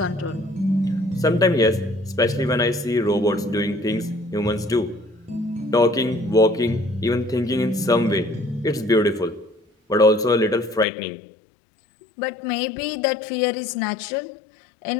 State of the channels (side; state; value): right; drops out; at 10.9 s